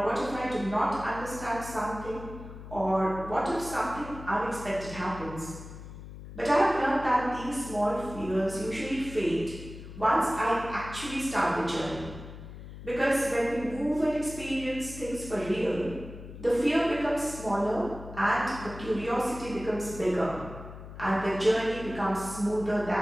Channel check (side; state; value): left; noise; hum, 13 dB below the sound